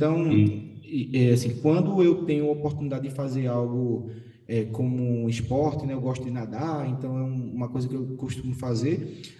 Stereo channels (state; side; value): identical; both; correlation 1.00